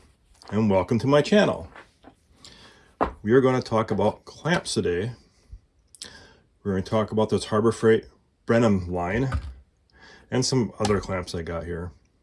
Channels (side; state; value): both; identical; correlation 1.00